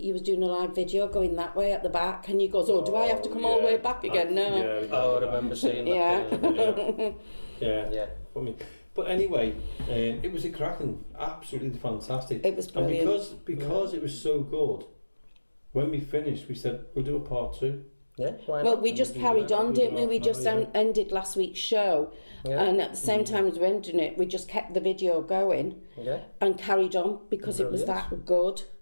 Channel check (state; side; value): inverted; both; correlation -1.00